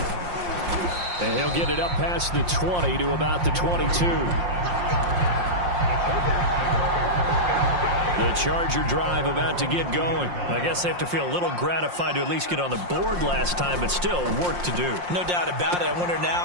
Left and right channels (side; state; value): left; late; 5.6 ms